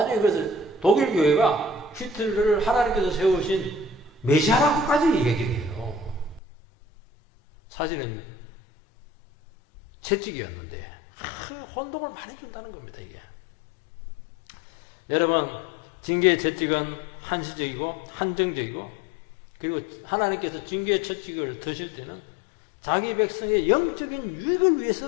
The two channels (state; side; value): drops out; right; at 6.4 s